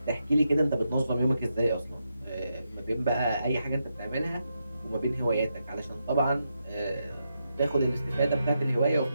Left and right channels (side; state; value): both; inverted; correlation -0.84